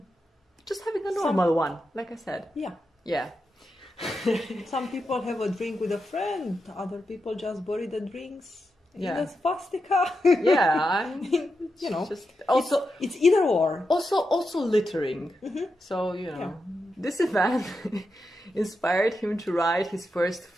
just having a normal one, like I said. Yeah. Some people have a drink with a friend, other people just bury the drinks in a swastika. Yeah, just also it's either or. Also littering. So this event inspired him to write his first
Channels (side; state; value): both; normal; correlation 0.87